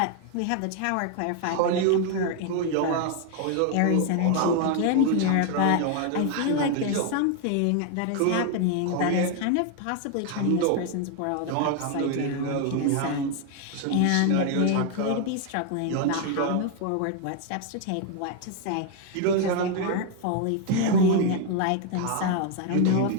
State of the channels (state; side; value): different; both; correlation 0.01